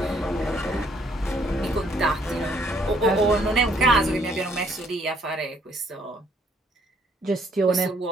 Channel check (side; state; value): both; normal; correlation 0.65